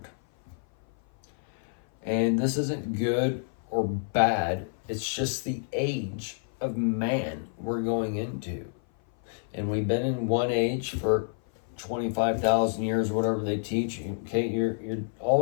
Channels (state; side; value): silent; right; 56 dB below the other